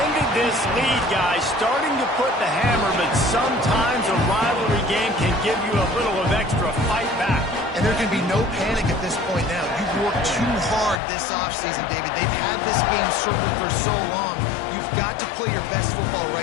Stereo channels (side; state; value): right; drops out; at 11.0 s